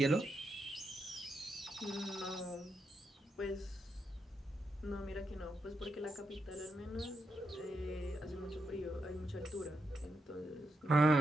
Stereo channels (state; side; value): normal; both; correlation 0.83